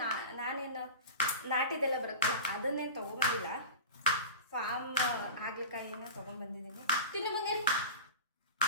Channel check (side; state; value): both; inverted; correlation -0.33